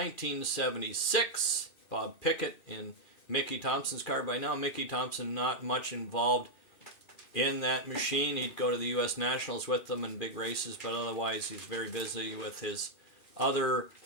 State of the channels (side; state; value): right; late; 2.4 ms